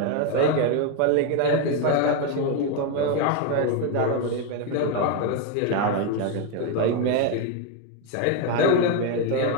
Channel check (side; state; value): both; different; correlation 0.01